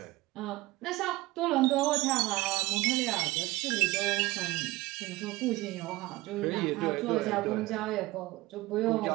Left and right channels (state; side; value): quieter; left; 19.7 dB